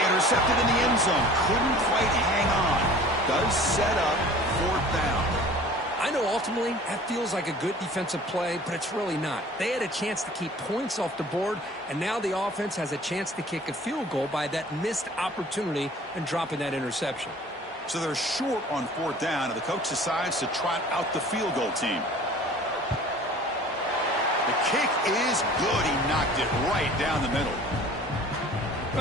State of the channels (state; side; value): normal; both; correlation 0.46